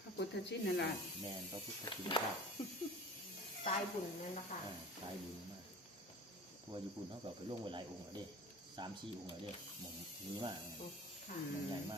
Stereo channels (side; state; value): both; normal; correlation 0.40